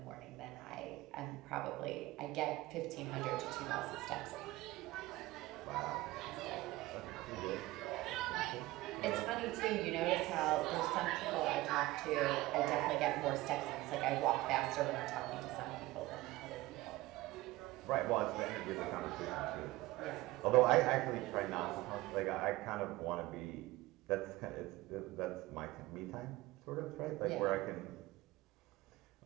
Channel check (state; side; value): quieter; left; 18.6 dB